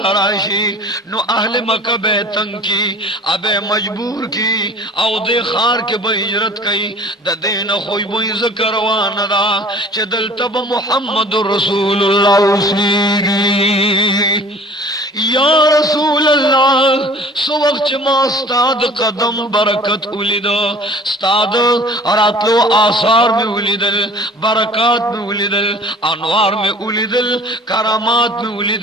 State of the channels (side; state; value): both; normal; correlation 0.48